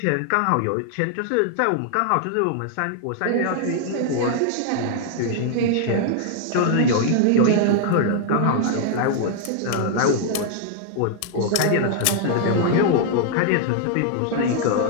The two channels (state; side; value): different; both; correlation 0.00